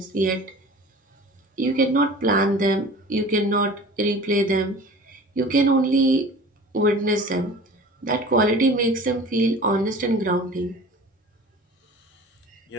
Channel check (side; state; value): both; normal; correlation 0.41